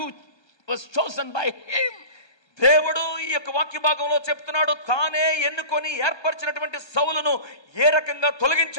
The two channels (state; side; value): late; right; 1.3 ms